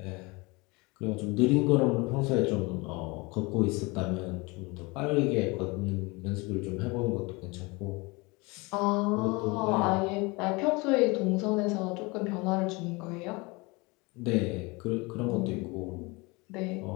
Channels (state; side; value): quieter; right; 25.9 dB